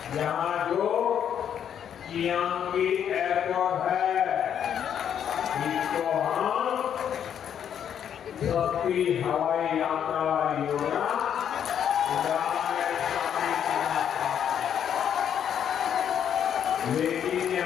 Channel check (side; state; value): right; quieter; 8.9 dB